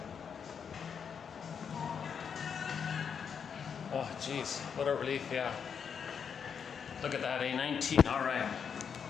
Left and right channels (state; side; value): quieter; right; 6.9 dB